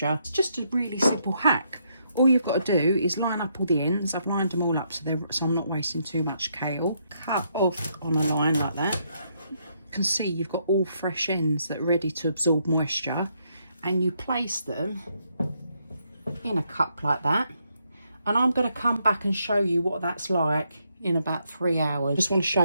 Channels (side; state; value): both; inverted; correlation -0.76